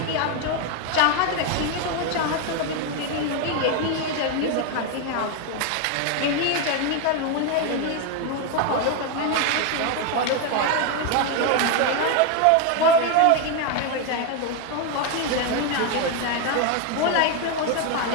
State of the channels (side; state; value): both; different; correlation 0.01